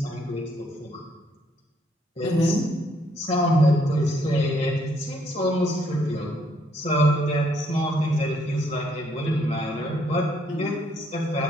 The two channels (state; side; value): normal; both; correlation 0.70